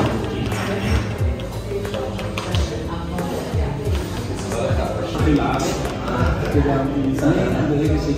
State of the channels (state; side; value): identical; both; correlation 1.00